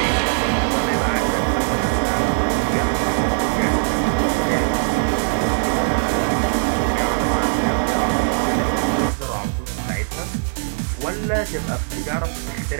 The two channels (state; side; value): silent; left; digital silence